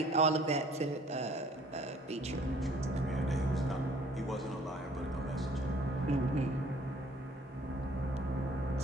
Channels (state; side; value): normal; both; correlation 0.56